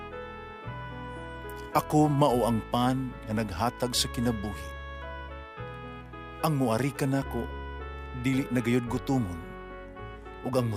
"Ako mao ang pan nga naghatag sa kinabuhi. Ang muari kanako dili nagayod gutomon, ug ang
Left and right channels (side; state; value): both; identical; correlation 1.00